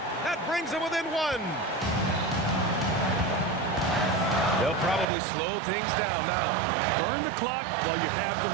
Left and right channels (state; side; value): drops out; left; at 5.1 s